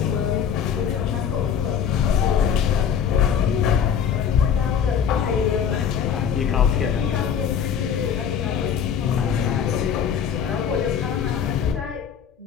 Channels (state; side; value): quieter; right; 7.9 dB